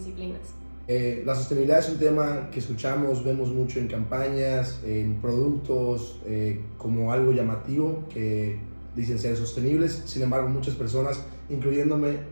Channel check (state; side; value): inverted; both; correlation -1.00